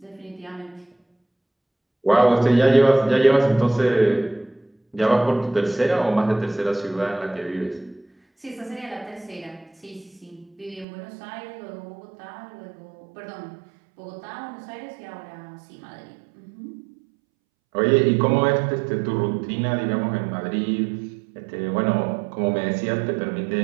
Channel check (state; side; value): drops out; left; at 10.9 s